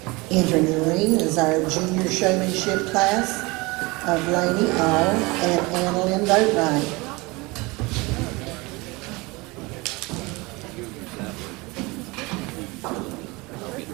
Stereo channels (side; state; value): left; quieter; 24.4 dB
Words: Entering the ring is our junior showmanship class of Lainey All and Annalyn Boatwright. I'll get